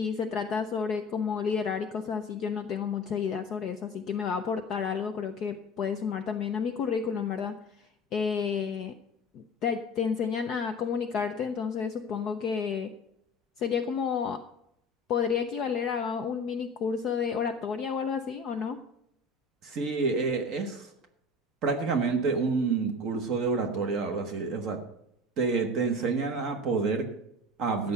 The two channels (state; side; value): normal; both; correlation 0.37